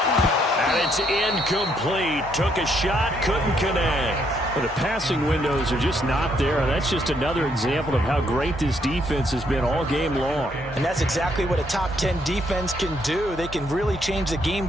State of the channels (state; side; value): normal; both; correlation 0.72